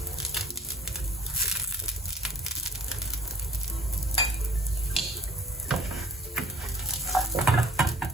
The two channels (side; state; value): both; normal; correlation 0.50